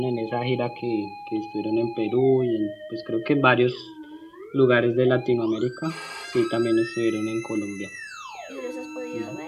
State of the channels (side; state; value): both; identical; correlation 1.00